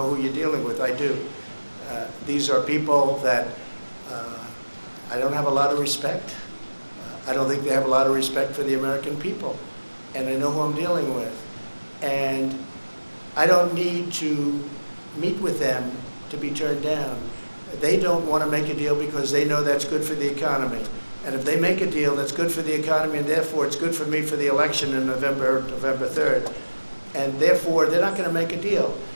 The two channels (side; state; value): both; inverted; correlation -1.00